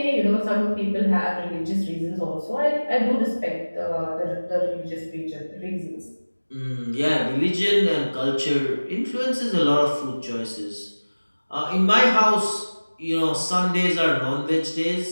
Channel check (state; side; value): inverted; both; correlation -1.00